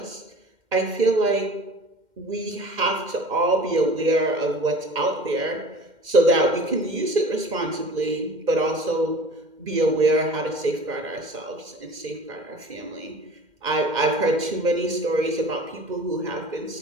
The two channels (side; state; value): left; late; 2.1 ms